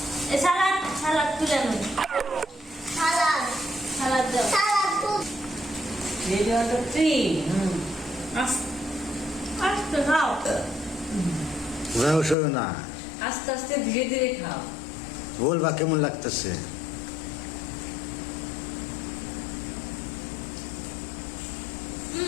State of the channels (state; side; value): drops out; right; at 12.4 s